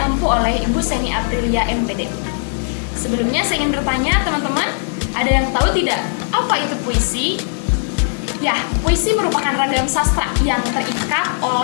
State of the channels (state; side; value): silent; right; digital silence